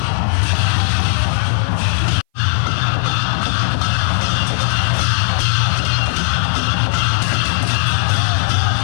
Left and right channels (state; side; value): silent; right; 61 dB below the other